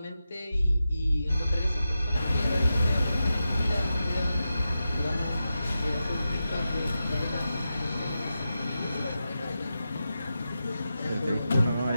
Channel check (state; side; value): inverted; both; correlation -0.90